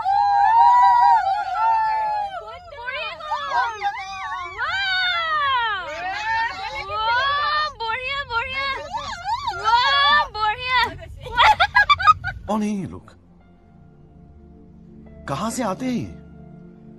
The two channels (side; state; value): both; identical; correlation 1.00